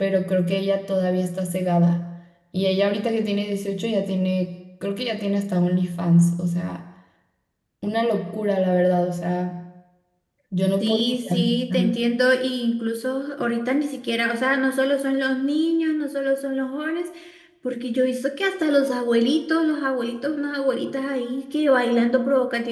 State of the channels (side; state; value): both; identical; correlation 1.00